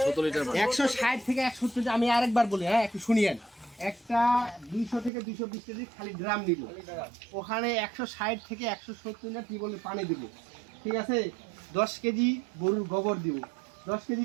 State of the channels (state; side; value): drops out; left; at 5.1 s